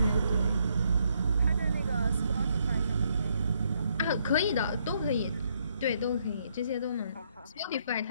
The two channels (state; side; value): inverted; both; correlation -0.73